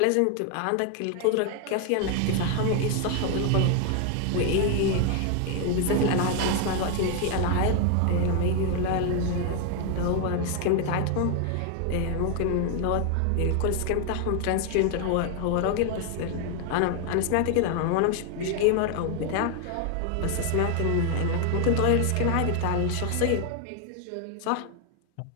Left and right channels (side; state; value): both; different; correlation 0.01